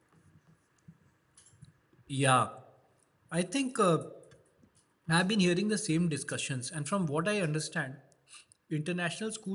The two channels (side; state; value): both; identical; correlation 1.00